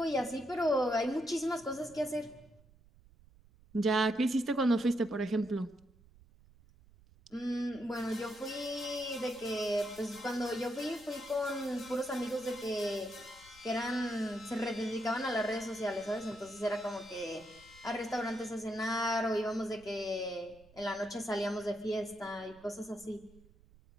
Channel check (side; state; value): right; noise; rumble, 25 dB below the sound